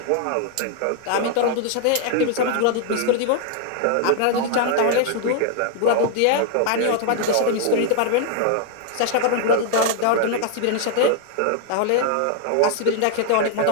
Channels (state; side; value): different; both; correlation 0.00